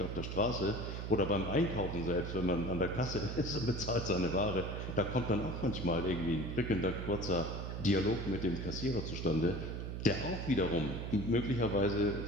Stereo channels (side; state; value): right; noise; hum, 5 dB below the sound